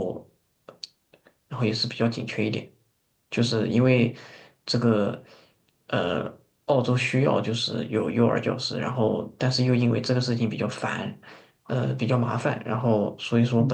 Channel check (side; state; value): both; identical; correlation 1.00